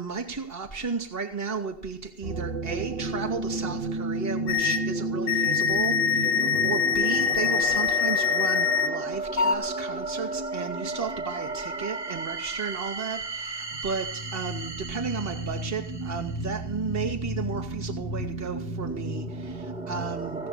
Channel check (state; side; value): late; right; 2.7 ms